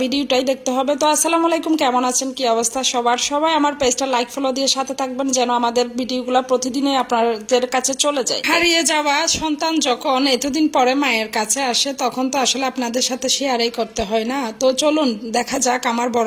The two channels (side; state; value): both; identical; correlation 1.00